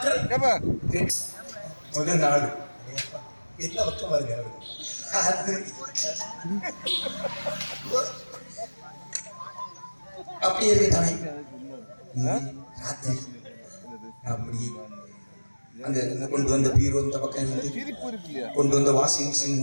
முதல் நாடு என்ன பக்கம் வருங்க அப்படி இருக்கு தானே ராத்திரி அப்படி அந்த கொண்டு வந்த பீரோ இந்த பக்கம் இருந்து கொண்டு வந்த வாஷிங் மிஷின்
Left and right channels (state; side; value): inverted; both; correlation -1.00